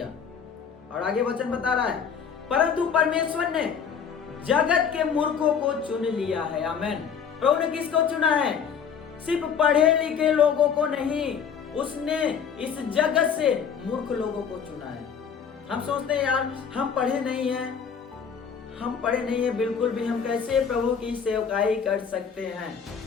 और आगे वचन बता रहा है, परंतु परमेश्वर ने जगत के मूर्खों को चुन लिया है। आमेन। प्रभु ने किसको चुना है? सिर्फ पढ़े लिखे लोगों को नहीं, उसने इस जगत से मूर्ख लोगों को चुना है। हम सोचते हैं यार हम पढ़े नहीं हैं, हम पढ़े नहीं हैं, बिल्कुल भी, हम कैसे प्रभु की सेवकाई कर सकते हैं।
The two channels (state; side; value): quieter; right; 7.0 dB